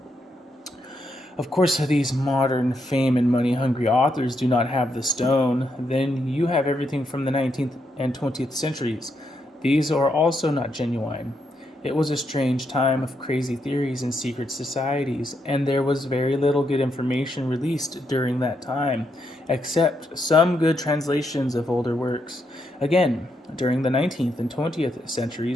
Of course, these modern fame and money hungry authors do not have the stone. Then you have everything from the 19th and 20th centuries. These are also not genuine. It was a strange time of crazy theories and secret societies, and there was very little good information released during that time, except some good translations of older works. Again, during the 19th and 20th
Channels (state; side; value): normal; both; correlation 0.80